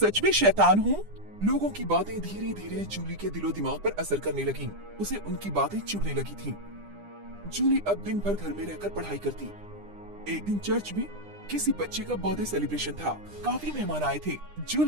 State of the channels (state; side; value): late; left; 9.9 ms